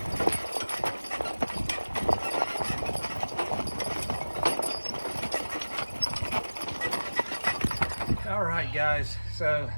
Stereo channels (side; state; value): both; inverted; correlation -1.00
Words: All right, guys, so